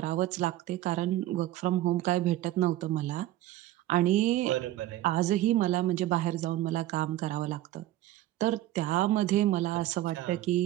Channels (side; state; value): left; quieter; 14.7 dB